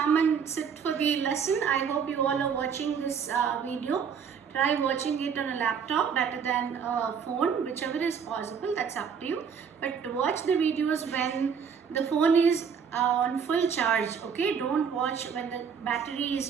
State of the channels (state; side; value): quieter; left; 6.8 dB